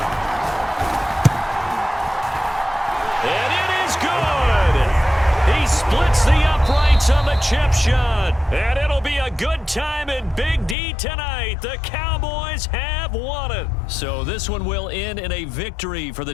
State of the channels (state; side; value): drops out; right; at 10.8 s